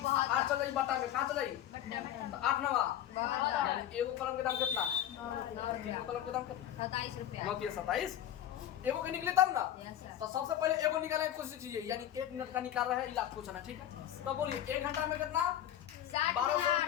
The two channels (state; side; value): quieter; right; 11.4 dB